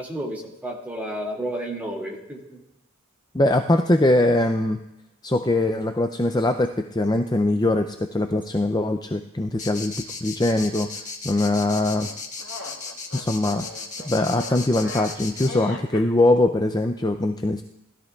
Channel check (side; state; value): both; normal; correlation 0.76